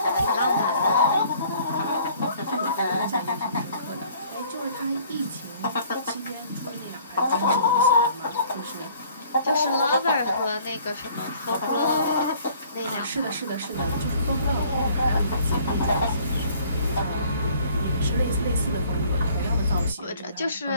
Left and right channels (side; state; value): both; inverted; correlation -0.56